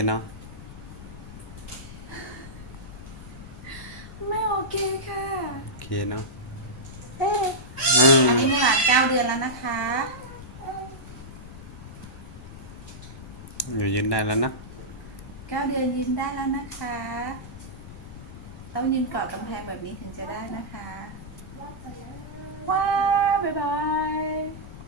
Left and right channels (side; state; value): left; noise; rumble, 14 dB below the sound